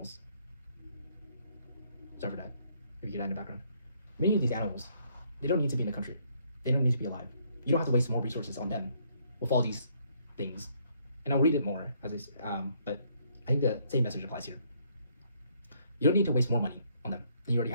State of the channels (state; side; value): inverted; both; correlation -0.68